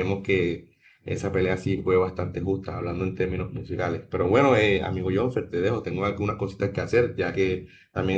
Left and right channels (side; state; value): both; identical; correlation 1.00